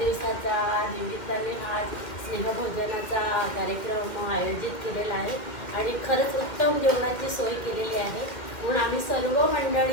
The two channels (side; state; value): right; late; 1.9 ms